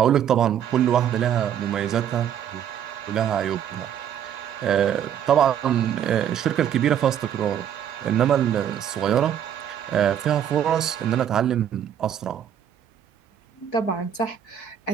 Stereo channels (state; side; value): quieter; left; 9.5 dB